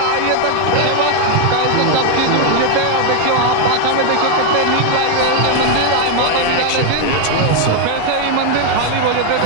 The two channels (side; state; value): both; different; correlation 0.02